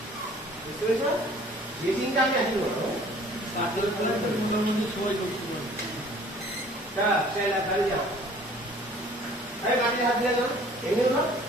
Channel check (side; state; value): both; normal; correlation 0.52